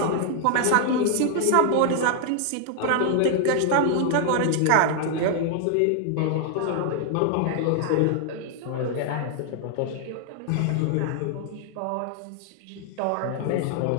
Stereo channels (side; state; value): both; different; correlation 0.00